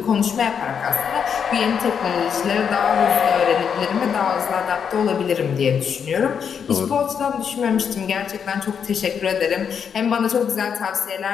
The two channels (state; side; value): quieter; right; 7.2 dB